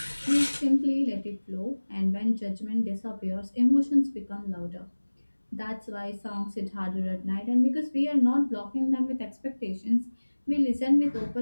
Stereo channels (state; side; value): inverted; both; correlation -1.00